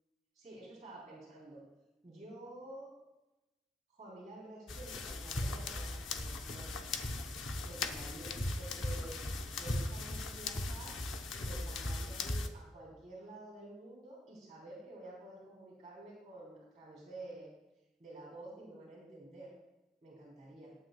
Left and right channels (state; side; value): normal; both; correlation 0.76